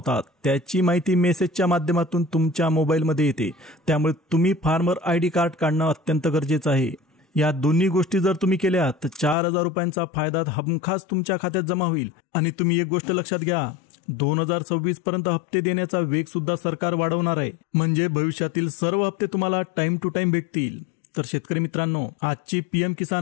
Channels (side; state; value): right; drops out; at 9.3 s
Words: त्याची माहिती मेसेजच्या माध्यमातून तुमच्या मोबाईलमध्ये येते. त्यामुळे तुम्ही फार्मर आयडी कार्ड काढणं अत्यंत गरजेचं आहे. या दोन्ही गोष्टी जर तुम्ही केल्या तर 4,000 रुपयांचा फायदा हमखास तुमच्या खात्यात जमा होईल. आणि तुम्ही एक गोष्ट लक्षात घ्या, 2026 पर्यंत हप्ते देण्याचा वेग सुद्धा सरकार वाढवणार आहे. म्हणजे भविष्यातील सर्व हप्ते तुम्हाला टाइम टू टाइम भेटतील. तर शेतकरी मित्रांनो, आजची पीएम